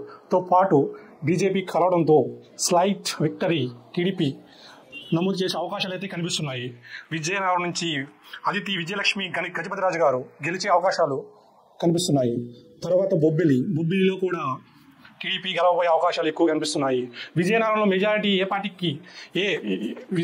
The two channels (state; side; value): identical; both; correlation 1.00